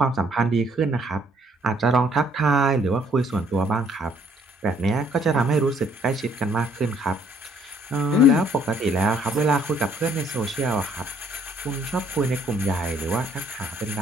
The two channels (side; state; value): both; normal; correlation 0.64